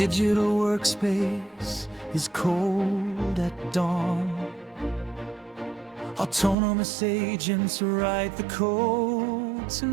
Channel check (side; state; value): left; drops out; at 6.6 s